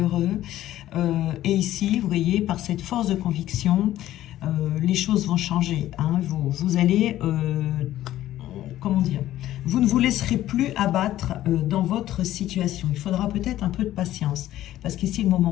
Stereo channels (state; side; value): quieter; right; 13.8 dB